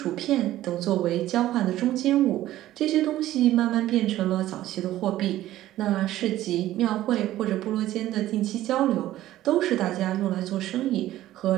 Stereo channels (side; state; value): left; quieter; 14.3 dB